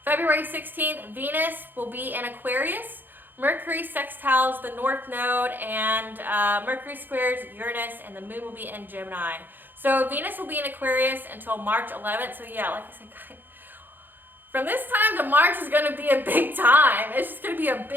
February 16th, Venus will be in Aquarius. Mercury sextiles the North Node, and Mercury squares Uranus, and the Moon will be in Gemini. So Venus will be in Aquarius until March 11th. So yeah, like I said, from this time to March is going to be a big time. It's just going to be a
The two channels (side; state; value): left; late; 0.091 ms